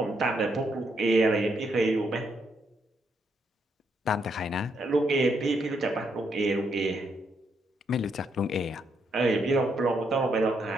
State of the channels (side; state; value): both; normal; correlation 0.77